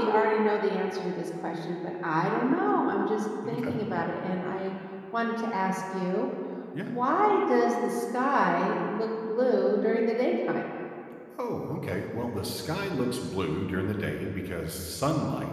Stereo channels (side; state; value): both; identical; correlation 1.00